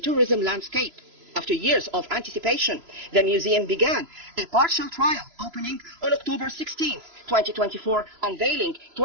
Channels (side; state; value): left; late; 3.0 ms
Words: tourism landscape. After years of anticipation, the museum began a partial trial opening on October 16, 2024, unveiling